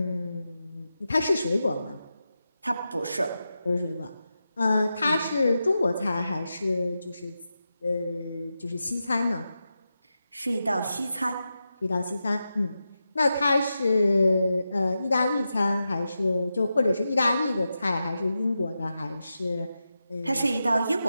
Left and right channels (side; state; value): both; inverted; correlation -0.90